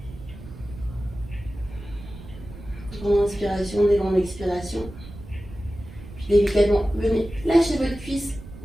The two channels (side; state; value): right; noise; rumble, 15 dB below the sound